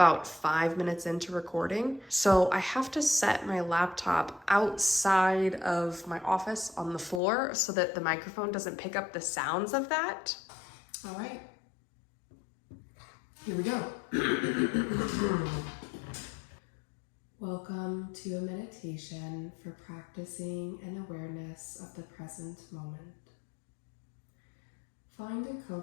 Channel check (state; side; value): drops out; right; at 7.2 s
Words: 5 minutes into recording. So I have to set my laptop outside of my office on the floor so that the microphone doesn't pick up the sounds of that. All right, here we go. Welcome to a meditation for practicing an awareness of the present moment. Find a